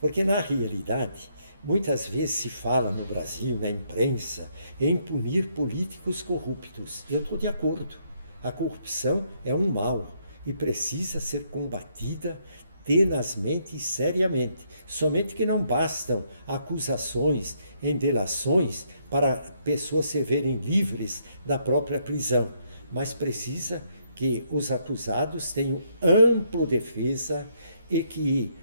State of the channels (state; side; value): inverted; both; correlation -0.73